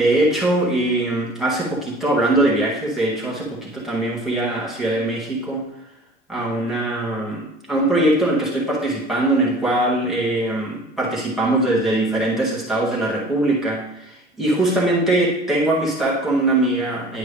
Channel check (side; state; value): both; normal; correlation 0.46